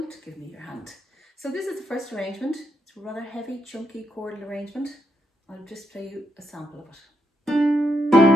Give Me Your Hand. So this is the first arrangement. It's a rather heavy, chunky chordal arrangement. I'll just play you a sample of it.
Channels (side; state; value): both; normal; correlation 0.80